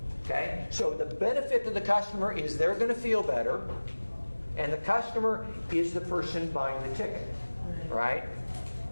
Okay? So the benefit to the customer is they're going to feel better, and the customer is the person buying the ticket. Right?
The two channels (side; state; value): both; inverted; correlation -1.00